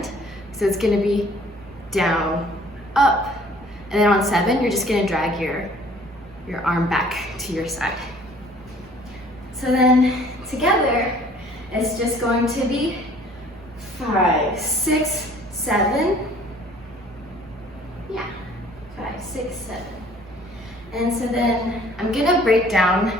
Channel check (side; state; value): both; normal; correlation 0.54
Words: So it's gonna be down, up. And then on 7, you're just gonna drag your arm back to your side. So then together, it's just going to be 5, 6, 7. Yeah, 5, 6, 7. And so then I'm gonna break